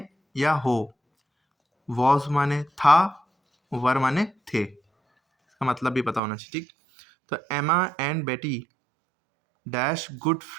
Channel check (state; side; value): drops out; left; at 6.2 s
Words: या हो, वॉज माने था, वर माने थे। इसका मतलब भी पता होना चाहिए, ठीक। तो एमा एंड बेटी डैश गुड